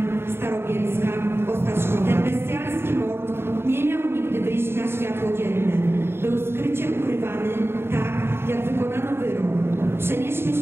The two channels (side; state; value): left; late; 0.11 ms